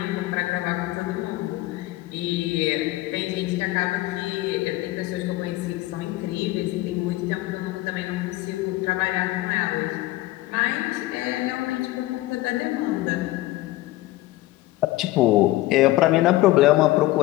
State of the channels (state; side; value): quieter; right; 17.6 dB